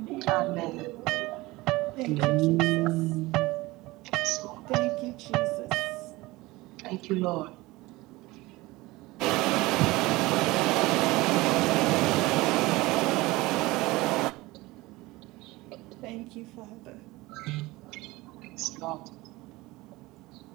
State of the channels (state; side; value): quieter; left; 20.6 dB